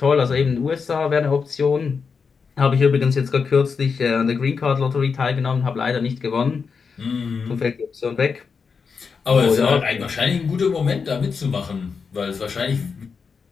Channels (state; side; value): quieter; right; 5.5 dB